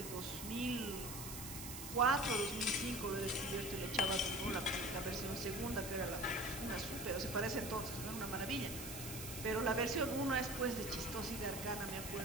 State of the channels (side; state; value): right; noise; hiss, 8 dB below the sound